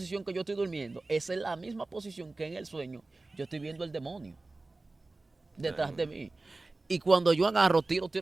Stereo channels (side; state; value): left; quieter; 3.2 dB